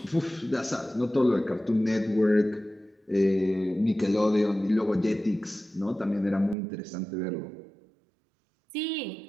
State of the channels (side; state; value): left; drops out; at 6.6 s